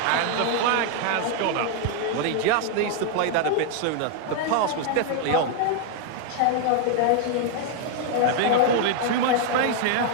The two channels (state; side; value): different; both; correlation 0.00